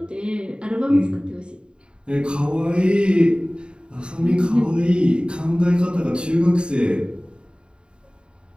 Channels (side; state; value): left; late; 0.051 ms